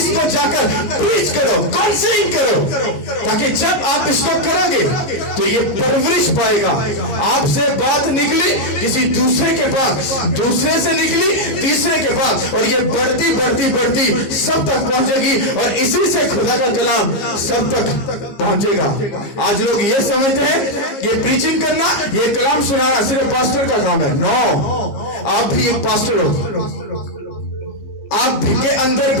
जाकर प्रीच करो, काउंसलिंग करो, ताकि जब आप इसको करोगे तो ये परवरिश पाएगा। आपसे बात निकली किसी दूसरे के पास, दूसरे से निकली तीसरे के पास, और ये बढ़ती बढ़ती बढ़ती सब तक पहुंचेगी, और इसी से खुदा का कलाम सब तक पहुंचेगा। आज लोग ये समझते हैं कि प्रीचिंग करना, ये कलाम सुनाना सिर्फ पास्टर का काम है। नो, आप भी एक पास्टर हो। आप के अंदर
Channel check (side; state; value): right; late; 15 ms